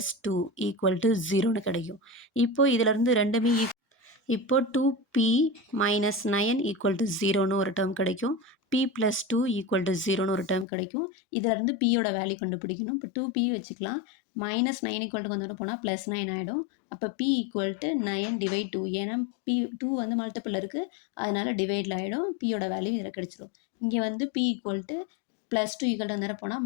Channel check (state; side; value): drops out; right; at 10.7 s